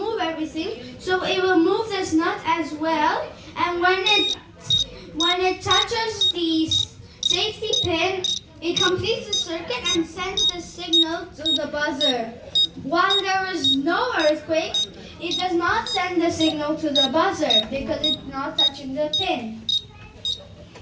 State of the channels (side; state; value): both; identical; correlation 1.00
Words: everything. So it will move this nut as well. And when it touches the safety pin, it completes the circuit and sends the signal to the buzzer. While there is no earthquake, it does not send the signal to the buzzer because it's not touching the pin.